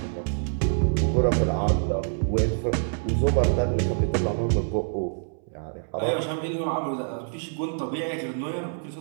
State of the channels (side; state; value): left; silent; 61 dB below the other